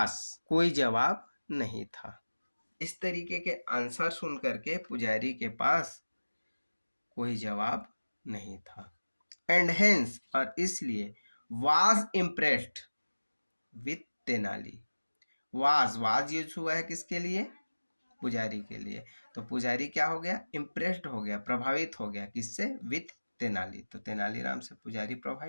कोई जवाब नहीं था। इस तरीके के आंसर सुन करके पुजारी के पास कोई जवाब नहीं था। एंड हेंस और इसलिए, was impressed with Tenali, was use हुआ है किसके लिए, पुजारी के लिए। तो पुजारी क्या हो गया, इम्प्रेस्ड हो गया, प्रभावित हो गया, किससे, विथ तेनाली, तो तेनालीराम से पुजारी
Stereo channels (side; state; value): both; inverted; correlation -1.00